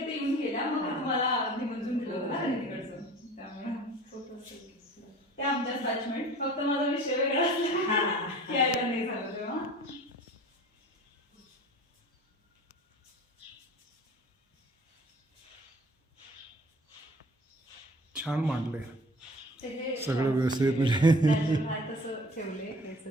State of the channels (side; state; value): both; normal; correlation 0.45